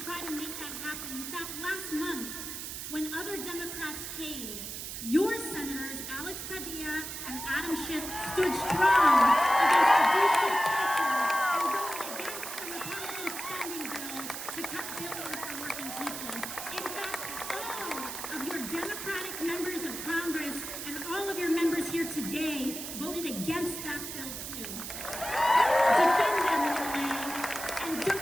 try to make that happen. In fact, last month, when other Democrats caved, your senators, Alex Padilla and Adam Schiff, stood strong against the DC pressure and voted against the Republican spending bill to cut billions for working people. In fact, all of your Democratic members of Congress and all of your members here today voted against that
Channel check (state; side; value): noise; right; hiss, 7 dB below the sound